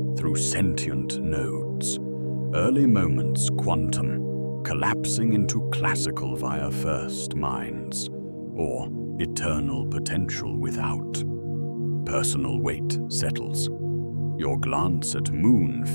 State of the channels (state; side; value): inverted; both; correlation -1.00